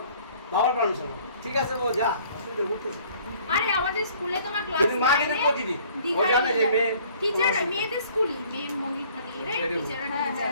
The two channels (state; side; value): inverted; both; correlation -0.56